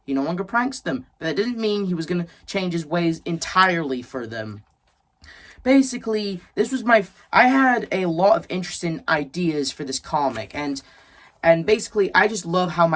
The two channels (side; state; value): both; identical; correlation 1.00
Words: he no longer pranks them. But that didn't mean he was going to change his ways entirely for them. Basically, I had a lot of interesting ideas for this comic. And basically, I just love how